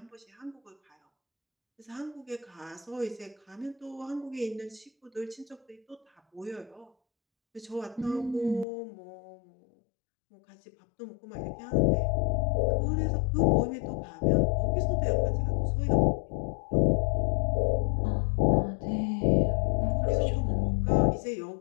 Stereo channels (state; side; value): drops out; right; at 8.7 s